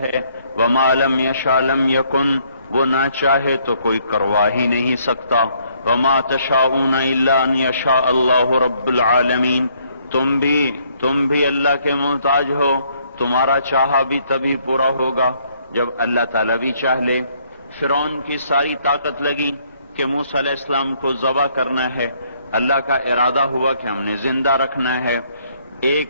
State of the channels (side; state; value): both; inverted; correlation -0.67